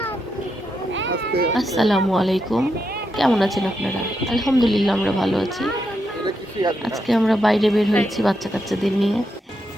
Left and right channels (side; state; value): both; normal; correlation 0.83